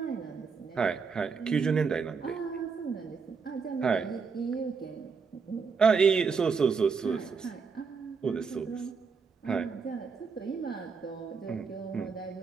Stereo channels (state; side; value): quieter; left; 5.4 dB